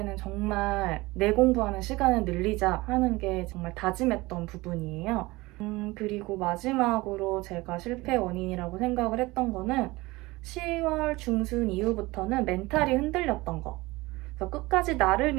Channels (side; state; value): left; quieter; 21.2 dB